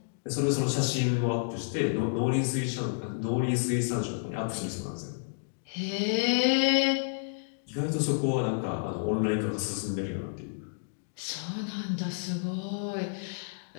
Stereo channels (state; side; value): silent; right; digital silence